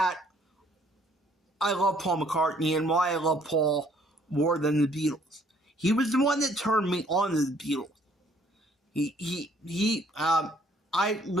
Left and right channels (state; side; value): normal; both; correlation 0.62